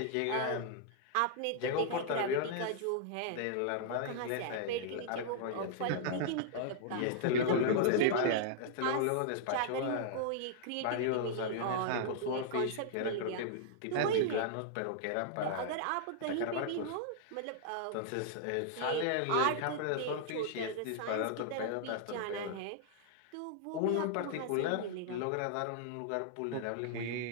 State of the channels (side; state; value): both; different; correlation -0.01